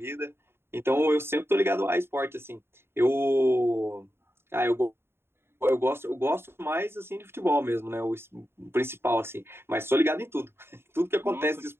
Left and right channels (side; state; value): left; late; 0.11 ms